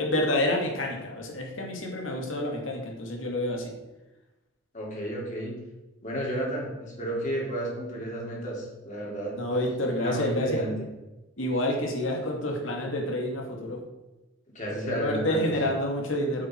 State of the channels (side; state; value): both; normal; correlation 0.17